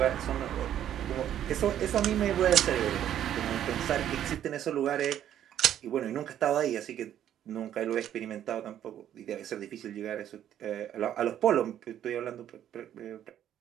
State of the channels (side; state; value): left; quieter; 10.8 dB